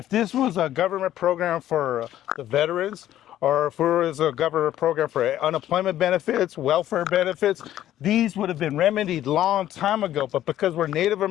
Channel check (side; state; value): right; quieter; 12.6 dB